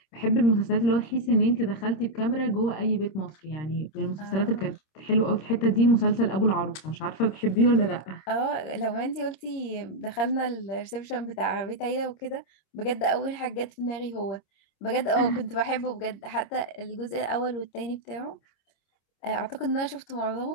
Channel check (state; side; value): late; right; 26 ms